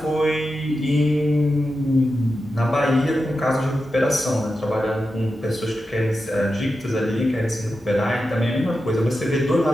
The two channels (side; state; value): both; normal; correlation 0.90